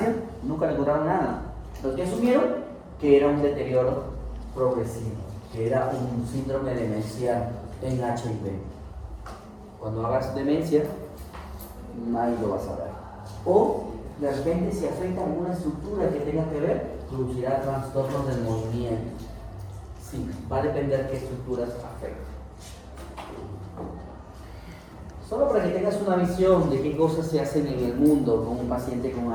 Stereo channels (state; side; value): identical; both; correlation 1.00